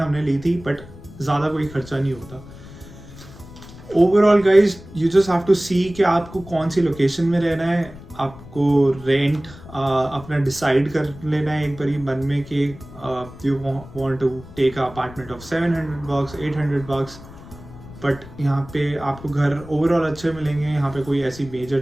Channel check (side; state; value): left; noise; rumble, 17 dB below the sound